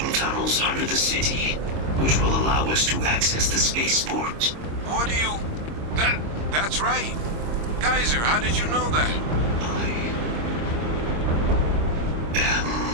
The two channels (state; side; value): late; left; 26 ms